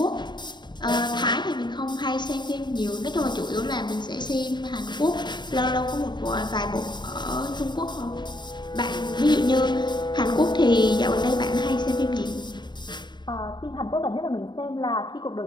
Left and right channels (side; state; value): right; late; 0.22 ms